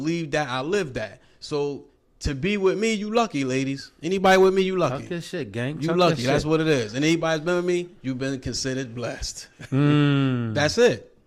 that, I live that. So to be with me, you lucky, ladies. Anybody with me, you lucky. Talk that shit, gang. You Talk lucky. that That's shit. what it is. And anybody's been with me, you've been considered blessed. That's it.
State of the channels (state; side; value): identical; both; correlation 1.00